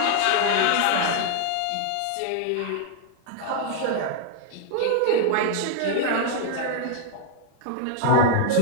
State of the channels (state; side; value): different; both; correlation 0.00